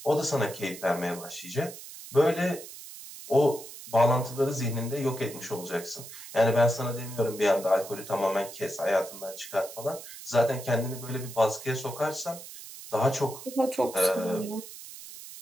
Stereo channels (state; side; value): noise; right; hiss, 14 dB below the sound